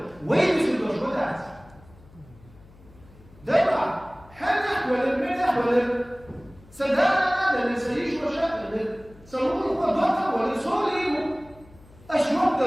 وين يسوي شغلات دابا حنا ولا المنح ولا سدانا ولا نسيش مشاكل سووا هو ضغط ولا سوري أشوف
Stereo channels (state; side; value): noise; left; hum, 24 dB below the sound